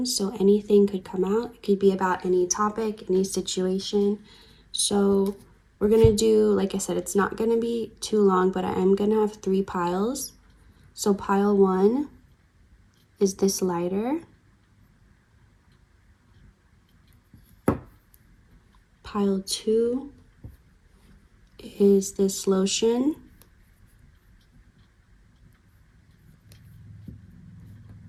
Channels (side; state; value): both; identical; correlation 1.00